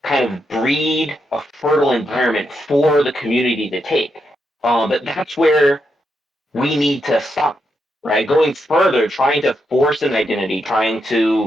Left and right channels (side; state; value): both; normal; correlation 0.83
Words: kind of breed a fertile environment for the community to take. But that's where we need to stop, right? Going further, trying to force an identity, trying